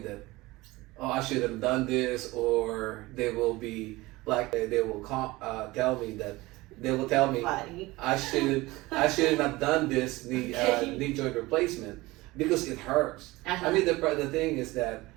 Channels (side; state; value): left; quieter; 20.5 dB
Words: oh, I should have done this, or they will be like they will tell me that. They will tell me I should have done this knee joint replacement because it hurts. I mean the thing is that